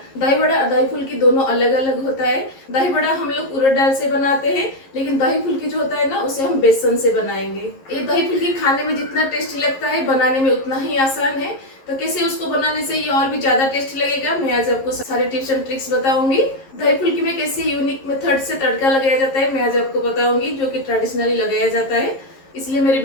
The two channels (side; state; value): right; late; 11 ms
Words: दही बड़ा और दही फुल्की दोनों अलग अलग होता है। दही बड़ा हम लोग उड़द दाल से बनाते हैं, लेकिन दही फुल्की जो होता है ना, उसे हम बेसन से बनाएंगे। ये दही फुल्की खाने में जितना टेस्टी लगता है, बनाने में उतना ही आसान है। तो कैसे उसको बनाने से ये और भी ज्यादा टेस्टी लगेगा, मैं आज आपको सारे टिप्स एंड ट्रिक्स बताऊंगी। दही फुल्की में कैसे यूनिक मेथड से तड़का लगाया जाता है, मैं आज आपको बताऊंगी, जो कि ट्रेडिशनली लगाया जाता है। इसलिए मेरे